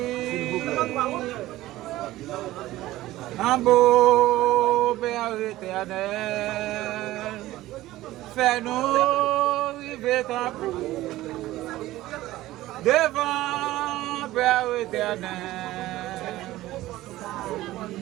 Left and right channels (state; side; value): quieter; left; 16.3 dB